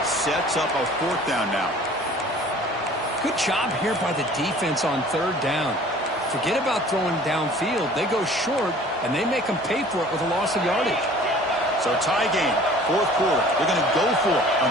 Sets up a fourth down now. Good job here by the defense on third down. Forget about throwing downfield. They go short, and they make them pay for it with a loss of yardage. So tie game, fourth quarter. They're going to go for it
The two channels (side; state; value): both; normal; correlation 0.49